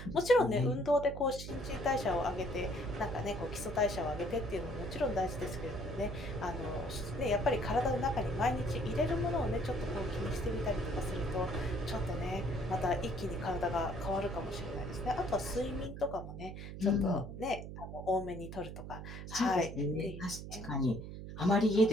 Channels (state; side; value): noise; right; hum, 9 dB below the sound